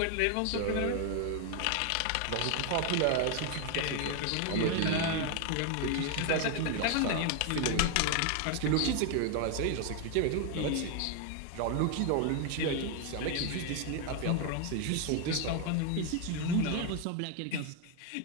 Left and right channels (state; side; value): different; both; correlation 0.01